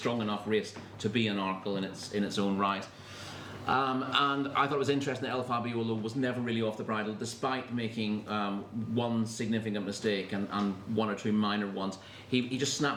enough race to be an Arkle in its own right. And I thought it was interesting that El Fabiolo was never really off the bridle, despite making one significant mistake and one or two minor ones. He just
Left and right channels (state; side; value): identical; both; correlation 1.00